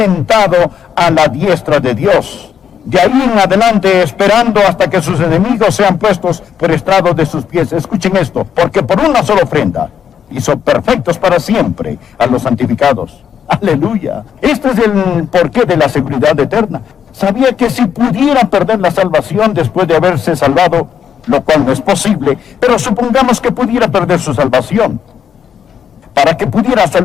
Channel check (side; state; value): right; quieter; 8.1 dB